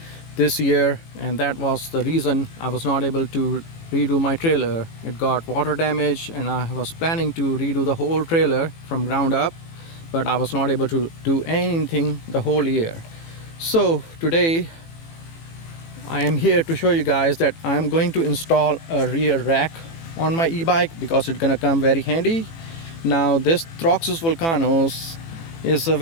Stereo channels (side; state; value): right; late; 18 ms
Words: this year, and that was the reason I was not able to redo my trailer. It got water damage, and I was planning to redo the whole trailer from ground up, but I was not able to do anything the whole year. So today I am here to show you guys that I'm going to install a rear rack on my e-bike because it's gonna come very handy. Now this Troxus Vulcanus is a